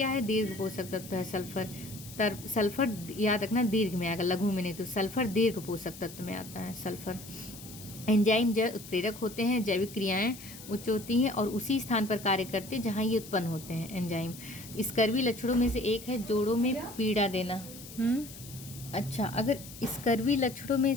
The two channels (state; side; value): noise; left; hiss, 15 dB below the sound